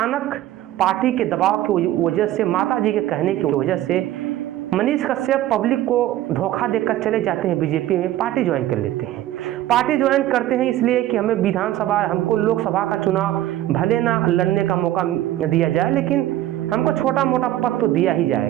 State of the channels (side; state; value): left; quieter; 13.8 dB